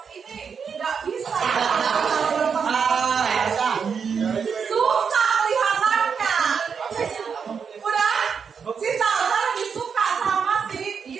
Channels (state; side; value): quieter; left; 6.3 dB